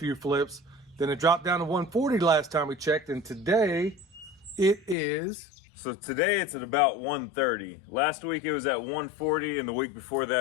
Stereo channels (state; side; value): drops out; right; at 5.0 s